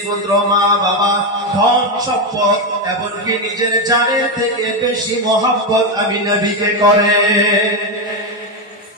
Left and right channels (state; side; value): normal; both; correlation 0.09